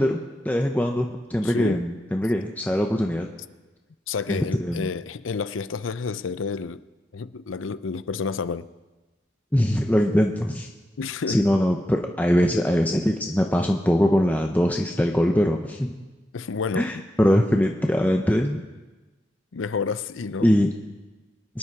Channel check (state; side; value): normal; both; correlation 0.86